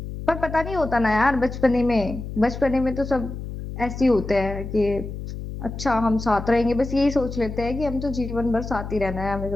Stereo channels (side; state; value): left; noise; hum, 8 dB below the sound